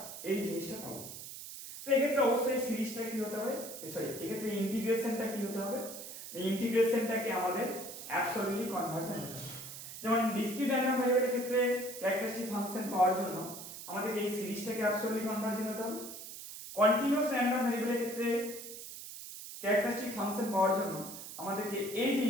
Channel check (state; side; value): noise; right; hiss, 11 dB below the sound